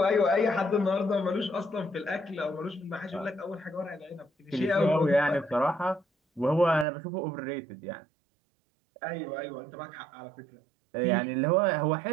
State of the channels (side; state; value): left; drops out; at 6.9 s